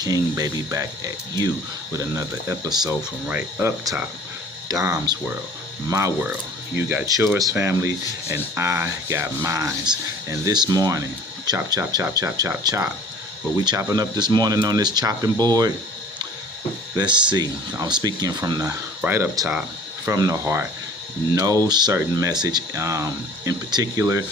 baby, back at you with another episode from right up top. Dom's world, my world. You got yours, family, and I got mine's. And this morning, chop, chop, chop, chop, chop, chop. What we chopping up this morning on this chopping board? Let's see. I'm speaking from the right up top, from the heart. No certain message in particular,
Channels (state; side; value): normal; both; correlation 0.48